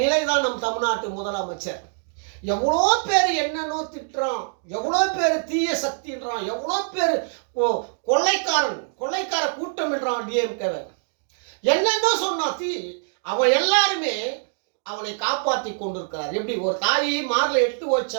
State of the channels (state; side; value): silent; left; digital silence